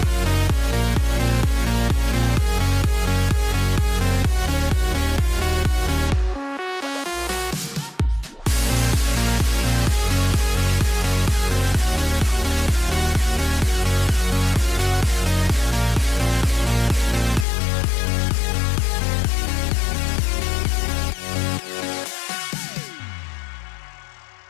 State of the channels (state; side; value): drops out; right; at 17.4 s